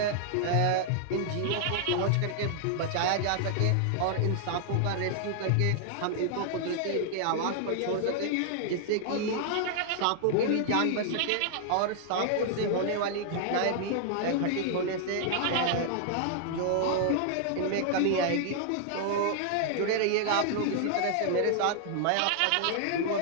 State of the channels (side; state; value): both; different; correlation -0.01